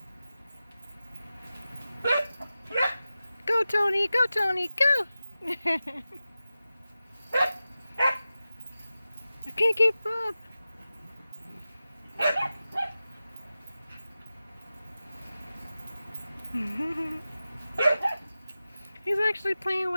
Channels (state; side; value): inverted; both; correlation -0.94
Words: Go Toni, go Toni, go! I can't keep up. He's actually playing